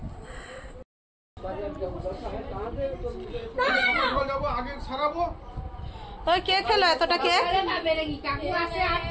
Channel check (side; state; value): both; identical; correlation 1.00